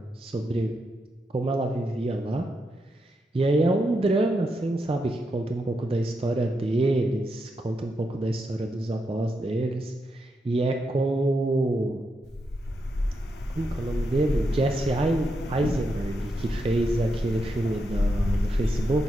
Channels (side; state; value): both; normal; correlation 0.84